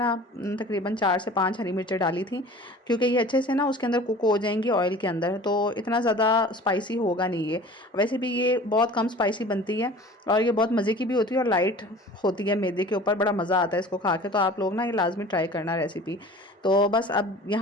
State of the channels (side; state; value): both; normal; correlation 0.43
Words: तकरीबन 4 से 5 हरी मिर्चें डाली थी, क्योंकि ये अच्छे से ना उसके अंदर कुक हो जाएंगी ऑयल के अंदर, तो इतना ज़्यादा स्पाइसी होगा नहीं ये। वैसे भी ये बहुत कम स्पाइसी बनती है और ये बहुत मज़े की भी होती है और लाइट होती है मैदे के ऊपर, बड़ा मज़ा आता है इसको खा के। तो आप लोग ना ये लाजमी ट्राई करना रेसिपी। तो बस अब